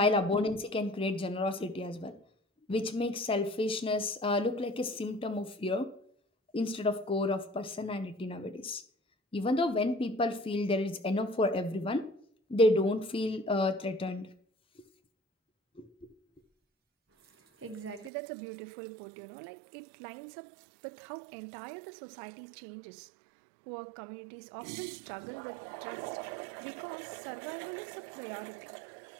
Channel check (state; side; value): drops out; left; at 18.1 s